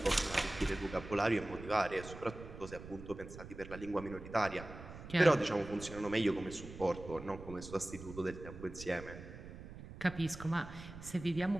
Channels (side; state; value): right; noise; rumble, 13 dB below the sound